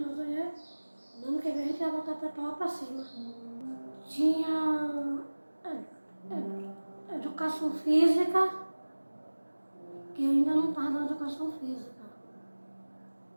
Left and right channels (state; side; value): inverted; both; correlation -1.00